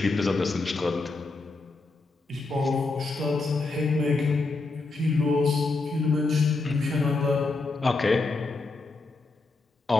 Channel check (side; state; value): right; quieter; 3.6 dB